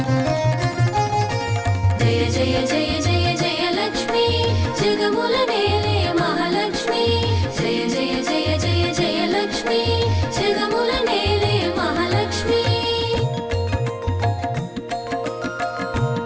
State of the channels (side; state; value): both; identical; correlation 1.00